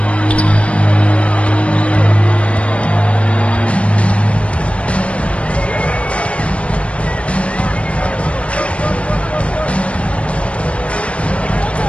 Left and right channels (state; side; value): late; right; 0.062 ms